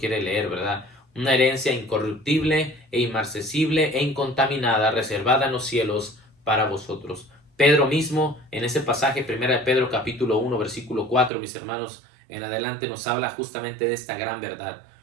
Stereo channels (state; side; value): drops out; left; at 11.3 s